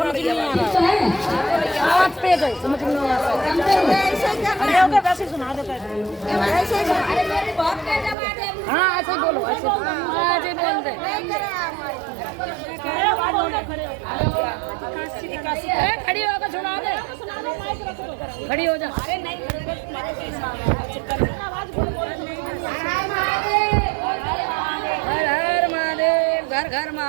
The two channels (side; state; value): left; drops out; at 8.2 s